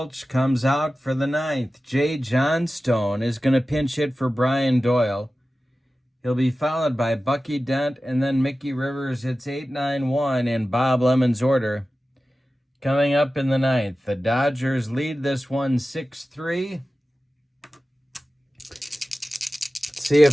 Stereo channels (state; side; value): normal; both; correlation 0.95